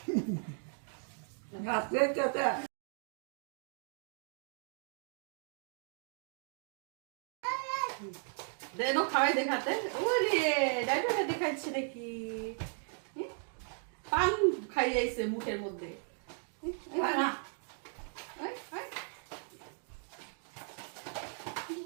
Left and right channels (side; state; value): left; silent; 53 dB below the other